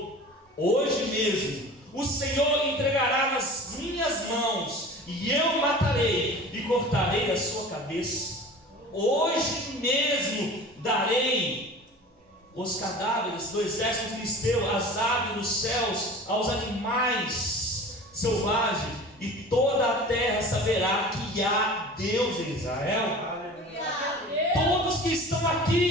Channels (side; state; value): both; normal; correlation 0.39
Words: Hoje mesmo o Senhor entregará nas minhas mãos, e eu o matarei e cortarei a sua cabeça. Hoje mesmo darei os cadáveres do exército filisteu, as aves dos céus, aos animais selvagens, e toda a terra saberá que há Deus em Israel. Todos que estão